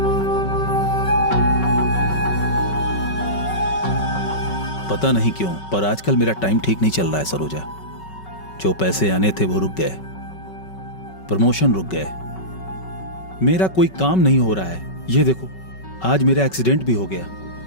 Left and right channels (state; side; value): late; right; 5.3 ms